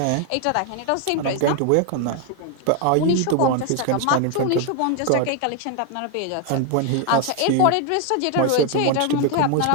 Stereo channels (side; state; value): both; different; correlation 0.00